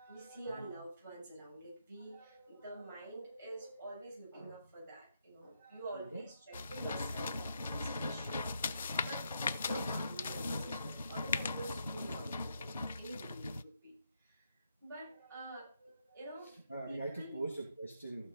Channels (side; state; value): both; inverted; correlation -0.79